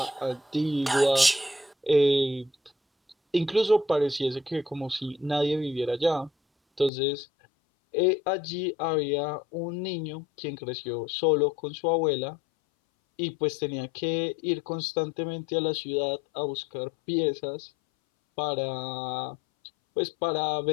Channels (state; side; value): drops out; right; at 6.9 s